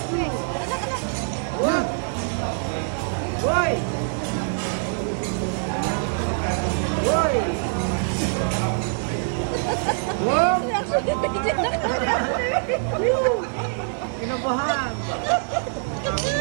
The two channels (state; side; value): silent; left; digital silence